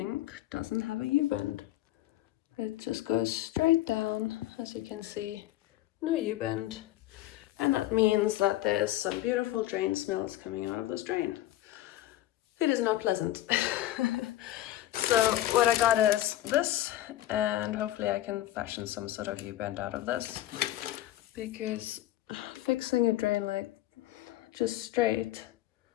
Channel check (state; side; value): quieter; right; 14.5 dB